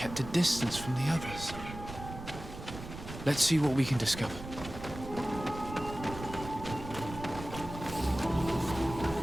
a distance from the others. Let's see what we can discover.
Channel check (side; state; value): right; noise; rumble, 11 dB below the sound